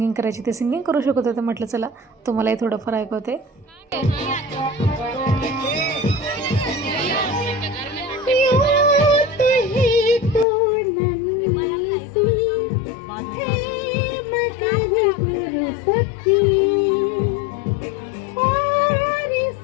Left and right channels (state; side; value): drops out; right; at 10.5 s